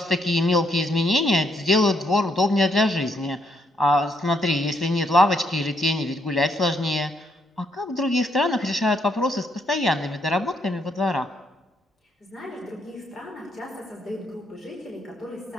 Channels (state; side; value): normal; both; correlation 0.73